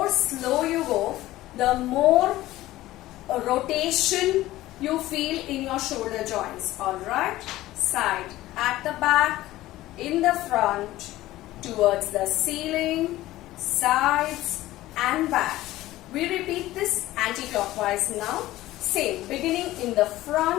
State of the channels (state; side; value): quieter; right; 16.2 dB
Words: slow you go, the more rotation you feel in your shoulder joints. Alright, side, at the back, in the front, towards the ceiling, sides and back. We repeat this anti-clockwise now. Same, beginning in the